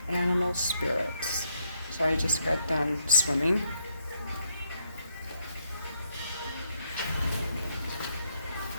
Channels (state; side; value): inverted; both; correlation -0.75